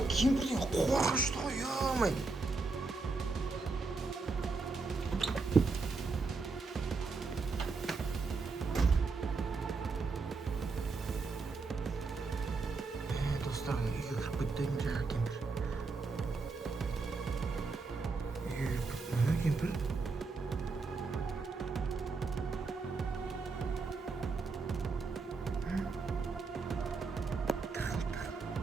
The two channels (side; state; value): left; quieter; 4.1 dB